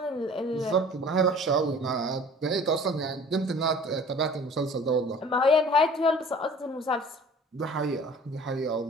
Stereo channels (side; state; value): both; normal; correlation 0.48